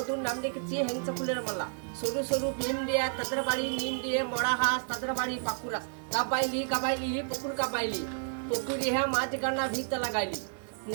নাম রেখেছি হেংসা ফুলের মালা, সরু সরু ভীম দিয়ে তাদের বাড়ি নিম দিয়ে মরা হাঁস, তাদের বাড়ি পাকুড়া, কাবাইলি কাবাইলি পুকুর কাবাইলি, পুকুরি হ্যাঁ মাছ গানা ভিত লাগাইলি,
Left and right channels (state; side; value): silent; left; 57 dB below the other